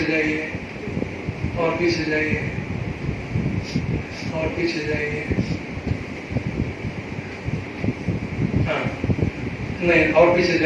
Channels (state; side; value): identical; both; correlation 1.00